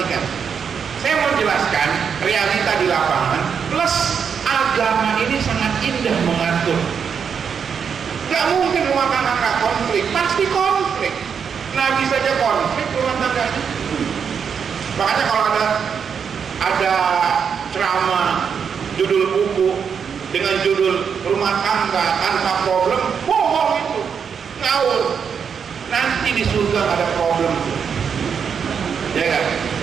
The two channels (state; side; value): quieter; left; 6.8 dB